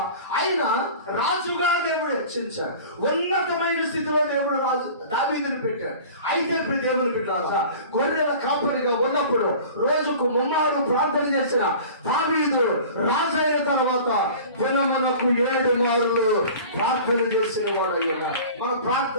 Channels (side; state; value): both; inverted; correlation -0.41